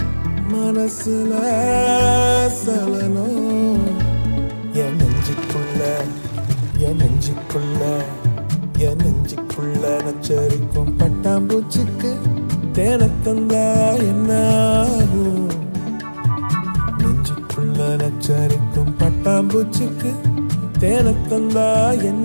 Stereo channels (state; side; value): inverted; both; correlation -1.00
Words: மனசுல சலனம் என் நெஞ்சுக்குள்ள என் நெஞ்சுக்குள்ள என் நெஞ்சுக்குள்ள நச்சரிக்கும் பட்டாம்பூச்சிக்கு தேனத்தந்தா என்ன ஆகும் நெஞ்சுக்குள்ள நச்சரிக்கும் பட்டாம்பூச்சிக்கு தேனத்தந்தா